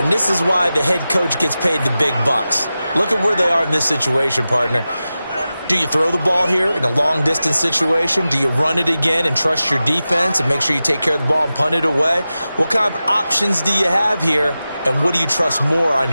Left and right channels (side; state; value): both; inverted; correlation -0.94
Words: this is why the head coach gets paid the big bucks. Look at where they are in this situation, partner. Do you throw the ball here in a long-distance situation? Do you run it again and trust your defense and make sure you take care of the ball and punt it away? What kind of options do you have here, and what do you trust more on